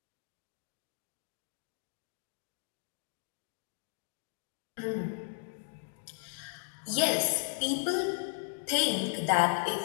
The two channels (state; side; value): silent; right; digital silence